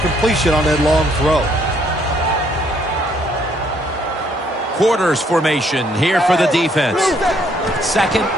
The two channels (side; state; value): both; normal; correlation 0.68